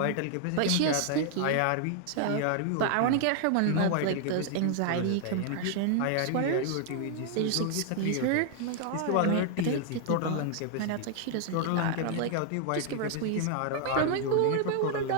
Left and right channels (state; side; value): different; both; correlation 0.00